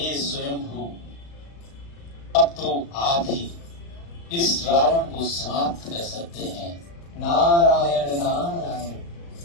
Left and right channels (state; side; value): late; right; 35 ms